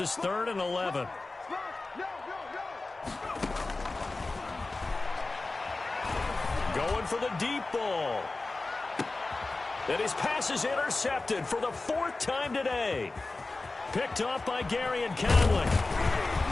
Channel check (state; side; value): quieter; right; 3.3 dB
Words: is 3rd and 11. Going for the deep ball. And his pass is intercepted for the 4th time today. Picked off by Gary and Conley.